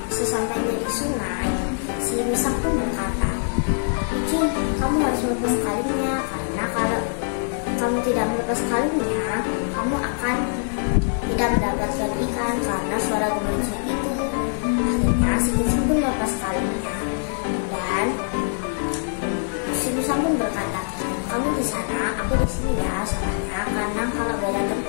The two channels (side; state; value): right; silent; digital silence